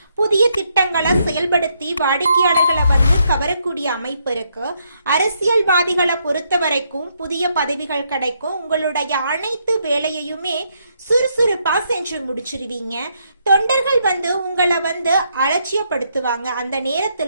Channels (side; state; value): both; inverted; correlation -0.76